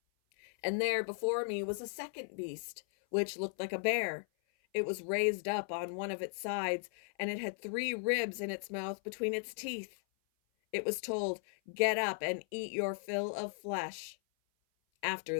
And there before me was a second beast, which looked like a bear. It was raised up on one of its sides, and it had 3 ribs in its mouth between its teeth. It was told, 'Get up and eat your fill of flesh.' After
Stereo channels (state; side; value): silent; right; 53 dB below the other